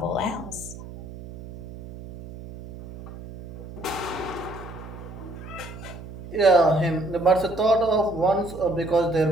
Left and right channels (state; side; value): noise; right; hum, 13 dB below the sound